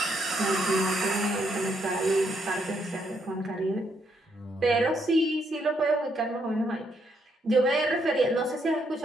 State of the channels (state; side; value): normal; both; correlation 0.75